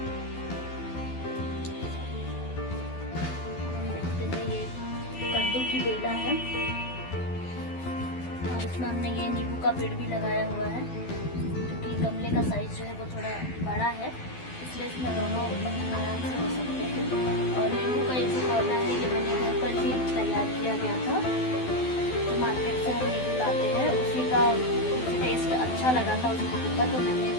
देखते हैं ये कद्दू की बेला है और इसमें हमने ये नींबू का पेड़ भी लगाया हुआ है क्योंकि गमले का साइज जो है वो थोड़ा बड़ा है, इसलिए इसमें दोनों आराम से हो सकते हैं। और नींबू का एक पौधा है ये मैंने घर पर ही तैयार किया गया था। तो मार्केट से हम नींबू लाते हैं, उसी का टेस्ट अच्छा लगा था उस नींबू का, तो मैंने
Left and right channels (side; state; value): right; late; 12 ms